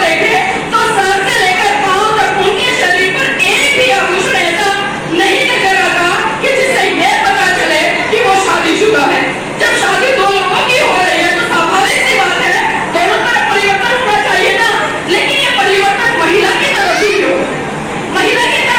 देखें तो सर से लेकर पांव तक उनके शरीर पर एक भी आभूषण ऐसा नहीं नजर आता कि जिससे यह पता चले कि वो शादीशुदा है। जब शादी दो लोगों की हो रही है तो स्वाभाविक सी बात है दोनों तरफ परिवर्तन होना चाहिए ना। लेकिन ये परिवर्तन महिला की तरफ ही क्यों? महिला की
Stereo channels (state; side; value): identical; both; correlation 1.00